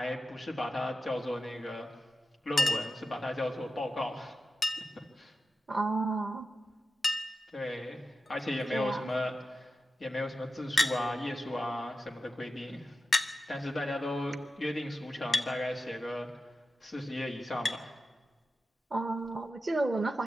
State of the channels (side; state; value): both; normal; correlation 0.91